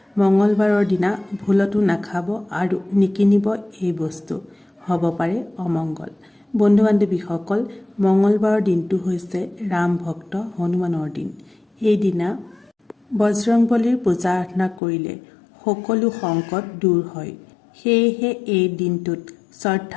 মঙলবাৰৰ দিনা ভুলতো নাখাব আৰু নিকিনিব এই বস্তু, হ'ব পাৰে অমংগল। বন্ধু বান্ধৱীসকল, মঙলবাৰৰ দিনটো হৈছে ৰাম ভক্ত হনুমানৰ দিন। এই দিনা বজৰংবলীৰ পূজা আৰাধনা কৰিলে সকলো সংকট দূৰ হয়। সেয়েহে এই দিনটোত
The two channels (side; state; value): right; drops out; at 14.8 s